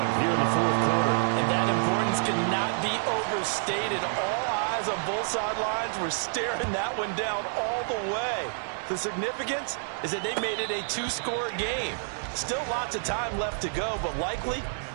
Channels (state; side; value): silent; left; 59 dB below the other